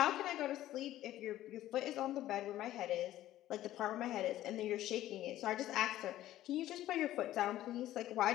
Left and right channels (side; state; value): right; quieter; 14.0 dB